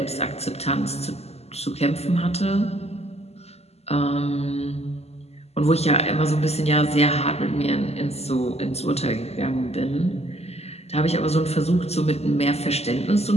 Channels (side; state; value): right; late; 0.30 ms